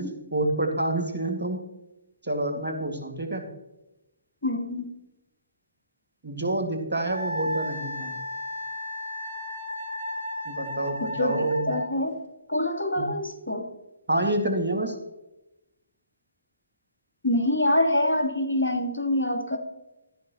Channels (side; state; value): both; inverted; correlation -0.59